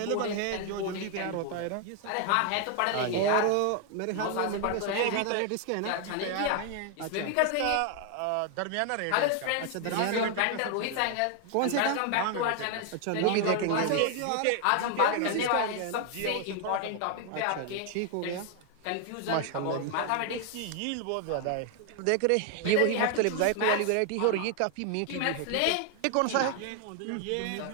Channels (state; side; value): different; both; correlation 0.00